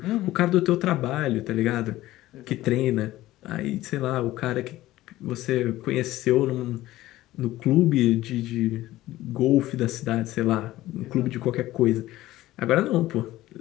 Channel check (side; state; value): right; quieter; 16.1 dB